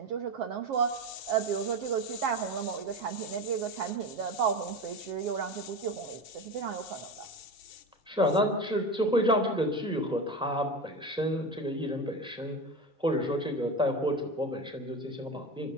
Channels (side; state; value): both; normal; correlation 0.24